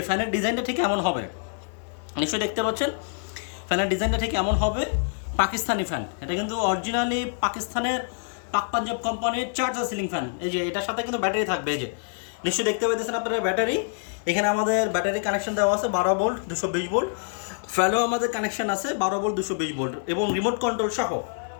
ফ্যানের ডিজাইনটা ঠিক এমন হবে, নিশ্চয়ই দেখতে পাচ্ছেন। ফ্যানের ডিজাইনটা ঠিক এমন হবে, পাকিস্তানি ফ্যান। এটা কিন্তু অরিজিনালি পাকিস্তানের পাক পাঞ্জাব কোম্পানির চার্জার সিলিং ফ্যান। এই যে এটার সাথে কিন্তু ব্যাটারি থাকবে, এই যে নিশ্চয়ই দেখতে পাচ্ছেন আপনারা ব্যাটারি। এখানে আমাদের ব্যাটারি কানেকশন দেওয়া আছে 12 ভোল্ট 220 ভোল্ট। ফ্যানও আমাদের কানেকশন আছে 12 ভোল্ট 220 ভোল্ট এবং রিমোট কন্ট্রোল সহ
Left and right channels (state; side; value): silent; right; 59 dB below the other